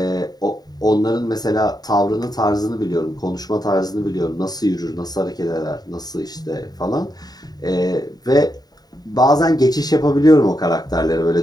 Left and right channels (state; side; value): late; right; 0.19 ms